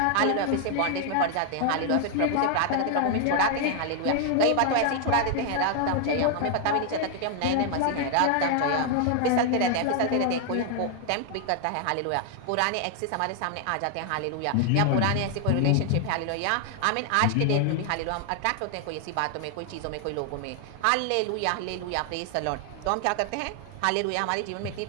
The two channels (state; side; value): different; both; correlation 0.00